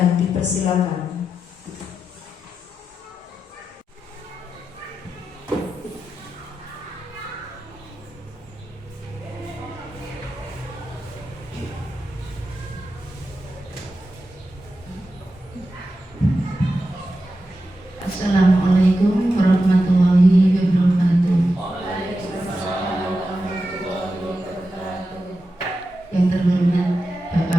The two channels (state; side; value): normal; both; correlation 0.90